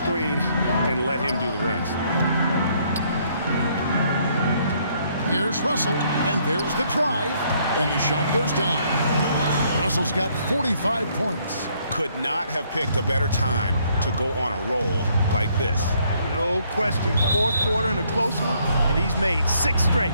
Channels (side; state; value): both; inverted; correlation -0.68